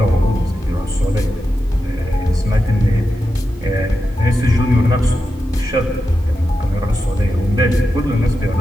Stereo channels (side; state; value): both; normal; correlation 0.89